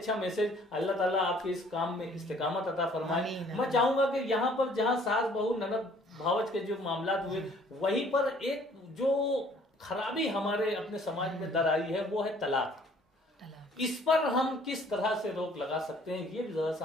मैसेज, अल्लाह ताला आपके इस काम में इस्तिकामत अता फरमाए। मैं चाहूंगा कि यहाँ पर जहाँ सास बहू ननद भावच के जो मामलात हुए, वहीं पर एक जो खराबी हमारे अपने समाज में दर आई है वो है तलाक। इस पर हम किस तरह से रोक लगा सकते हैं, ये भी जरा सा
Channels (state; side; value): normal; both; correlation 0.57